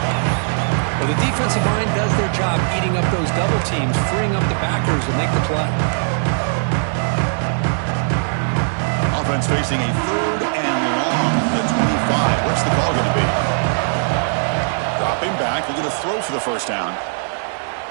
Well, the defensive line does their job eating up those double teams, freeing up the backers to make the play. Offense facing a 3rd and long from the 25. What's the call going to be? Dropping back. Looking to throw for the 1st down.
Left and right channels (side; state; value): left; silent; 66 dB below the other